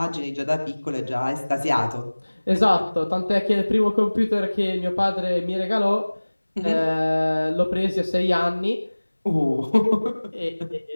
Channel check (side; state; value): both; inverted; correlation -1.00